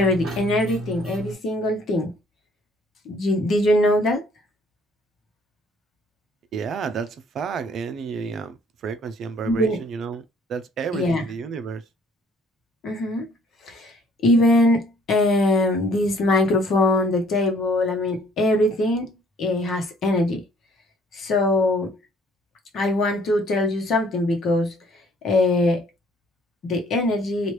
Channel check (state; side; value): normal; both; correlation 0.59